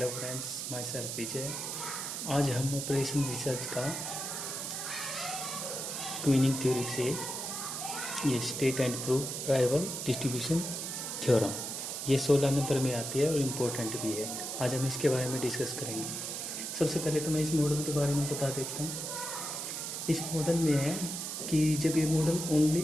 friends, my self विजय। आज हम operation research का क्वीनिंग थ्योरी से ये state and proof arrival distribution theorem ये 16 नंबर में आती है और इम्पोर्टेंट भी है। आज हम इसके बारे में डिस्कस करेंगे। सबसे पहले तो मैं इस मॉडल के बारे में बता देता हूँ। इस मॉडल में है कि जब ये मॉडल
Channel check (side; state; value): right; noise; hiss, 4 dB below the sound